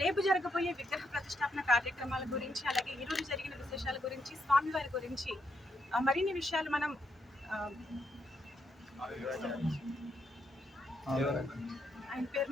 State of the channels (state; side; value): normal; both; correlation 0.79